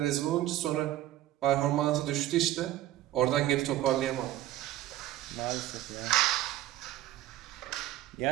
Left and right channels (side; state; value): left; quieter; 14.2 dB